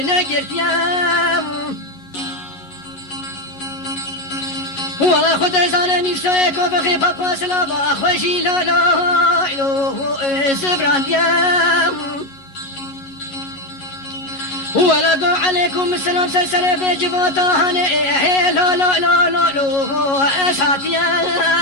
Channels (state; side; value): late; right; 11 ms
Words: ولا خد زان ميسو كو بخي بابا سلا ما خوشي لو لو لو زبرانديا ولا دو عليكم السلام سلسلة بجبوتا هني لو لو لو لو لو اساتيا